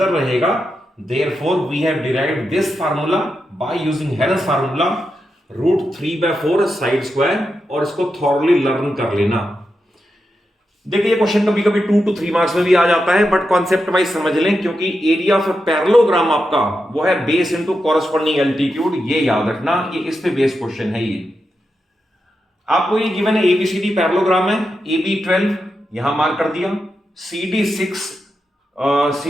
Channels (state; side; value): normal; both; correlation 0.87